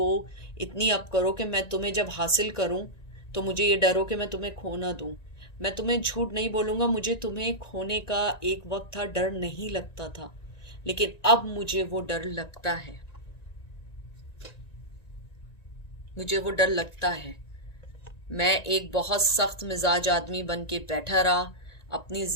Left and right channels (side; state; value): right; late; 1.9 ms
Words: इतनी up करो कि मैं तुम्हें जब हासिल करूं तो मुझे ये डर हो कि मैं तुम्हें खो ना दूं। मैं तुम्हें झूठ नहीं बोलूंगा, मुझे तुम्हें खोने का एक वक्त था, डर नहीं लगता था, लेकिन अब मुझे वो डर लगता है, मुझे वो डर लगता है। मैं एक बहुत सख्त मिजाज आदमी बन के बैठा रहा, अपनी